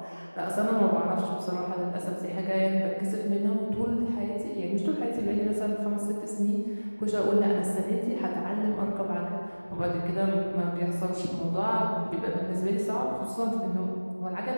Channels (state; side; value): inverted; both; correlation -1.00